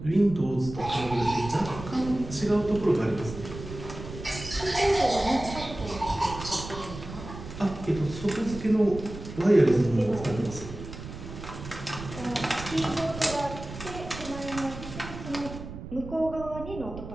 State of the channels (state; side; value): noise; right; rumble, 11 dB below the sound